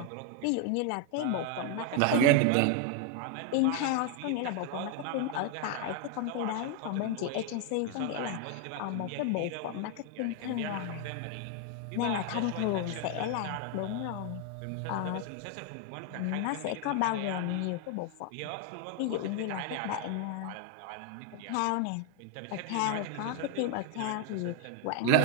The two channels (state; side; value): different; both; correlation 0.01